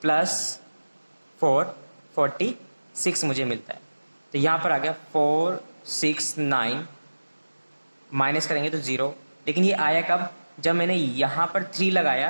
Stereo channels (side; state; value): both; inverted; correlation -1.00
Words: प्लस 4 46 मुझे मिलता है। तो यहाँ पर आ गया 4 6 9, माइनस करेंगे तो 0। लेकिन ये आया कब, जब मैंने यहाँ पर 3